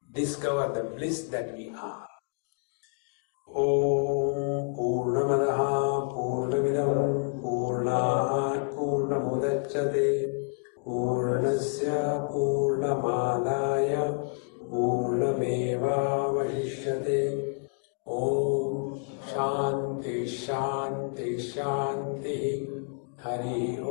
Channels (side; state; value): right; quieter; 37.5 dB